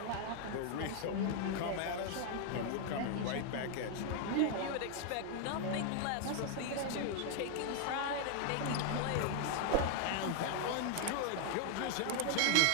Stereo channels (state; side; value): different; both; correlation 0.00